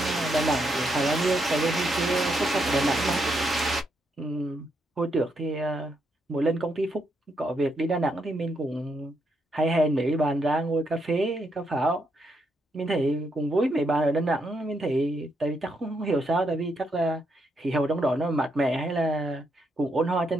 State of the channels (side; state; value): both; normal; correlation 0.78